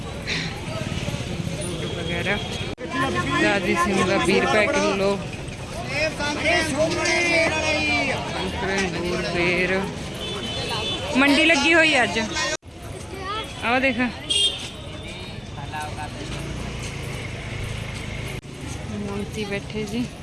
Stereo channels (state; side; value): identical; both; correlation 1.00